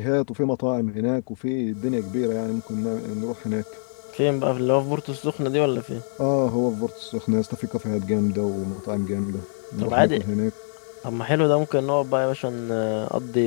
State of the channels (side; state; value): right; silent; digital silence